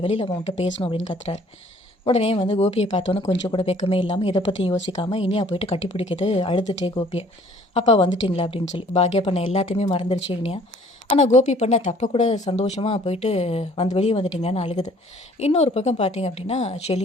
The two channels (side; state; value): both; normal; correlation 0.56